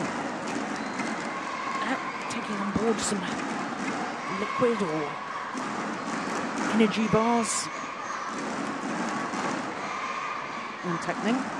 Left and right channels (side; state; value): both; identical; correlation 1.00